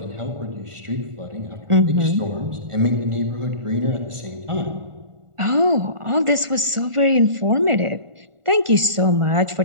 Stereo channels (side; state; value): left; late; 1.4 ms